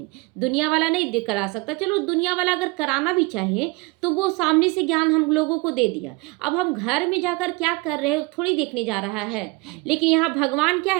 दुनिया वाला नहीं करा सकता, चलो दुनिया वाला अगर कराना भी चाहे तो वो सामने से ज्ञान हम लोगों को दे दिया, अब हम घर में जाकर क्या कर रहे हो थोड़ी देखने जा रहा है। लेकिन यहाँ भगवान क्या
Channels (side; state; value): left; quieter; 25.6 dB